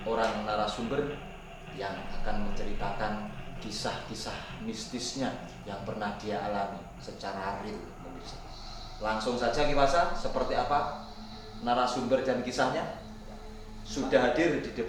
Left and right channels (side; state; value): both; identical; correlation 1.00